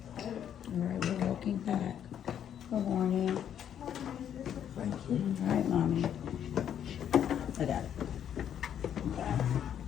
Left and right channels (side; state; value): right; quieter; 9.5 dB